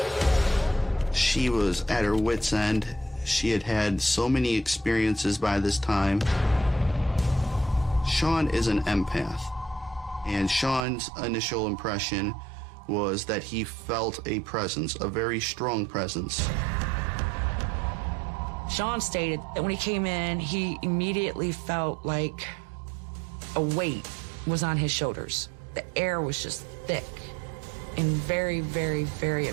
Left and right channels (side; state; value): left; drops out; at 10.9 s